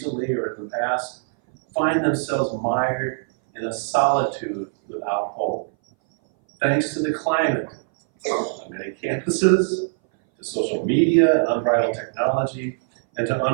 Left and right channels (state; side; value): silent; left; 60 dB below the other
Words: or in the past, find themselves mired in a solitude without hope. Thanks to the climate on many campuses, to social media and unbridled technology, and to